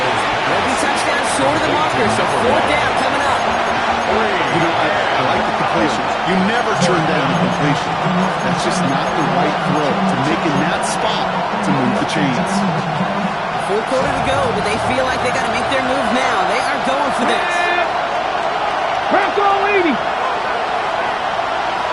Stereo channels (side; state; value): both; identical; correlation 1.00